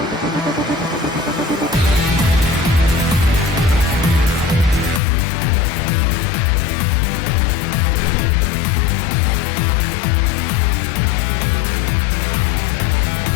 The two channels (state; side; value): drops out; right; at 5.0 s